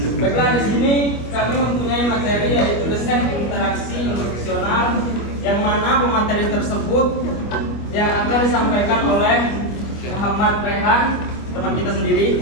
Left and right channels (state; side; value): late; right; 25 ms